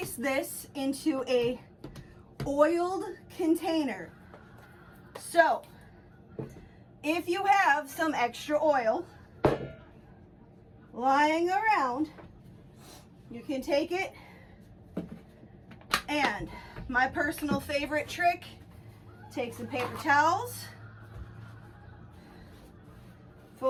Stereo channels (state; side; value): identical; both; correlation 1.00